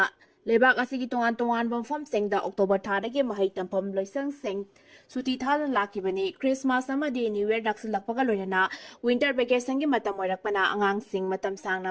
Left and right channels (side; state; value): both; identical; correlation 1.00